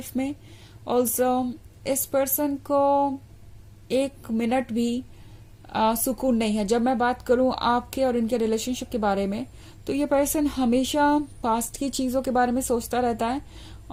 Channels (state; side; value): identical; both; correlation 1.00